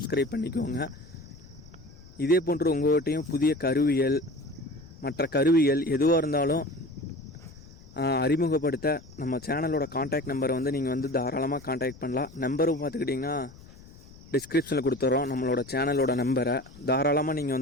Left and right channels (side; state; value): left; noise; rumble, 21 dB below the sound